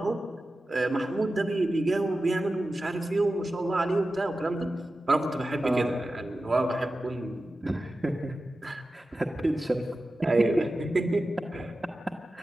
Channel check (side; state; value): both; normal; correlation 0.94